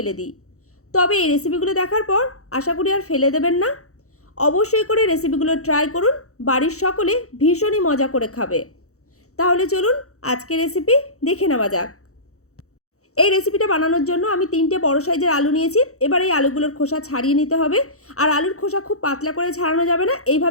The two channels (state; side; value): late; right; 0.65 ms